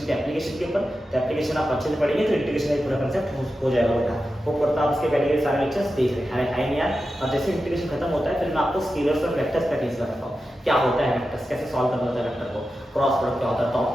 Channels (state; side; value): normal; both; correlation 0.91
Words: के एप्लीकेशन के ऊपर, तो एप्लीकेशन आप अच्छे से पढ़ेंगे तो इंटीग्रेशन का पूरा कंसेप्ट हो जाएगा बेटा, वो करता आप उसके पहले के सारे लेक्चर्स देख रहे हैं यार। और जैसे इंटीग्रेशन खत्म होता है फिर मैं आपको स्केलर्स और वेक्टर्स का टीच करता हूँ, क्या होता है वेक्टर्स, कैसे सॉल्व करना होता है वेक्टर को, क्रॉस प्रोडक्ट क्या होता है, डॉट